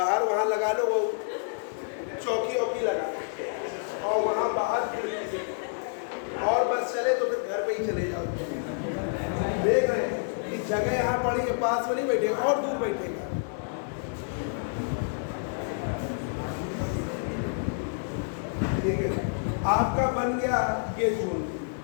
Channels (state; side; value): silent; right; digital silence